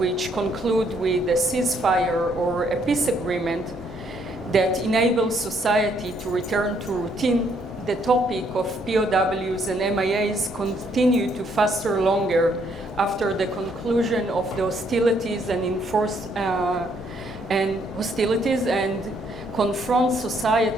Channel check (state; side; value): normal; both; correlation 0.69